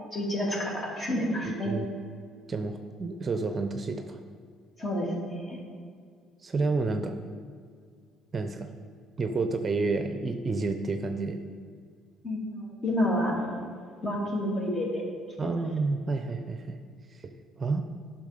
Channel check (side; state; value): both; normal; correlation 0.73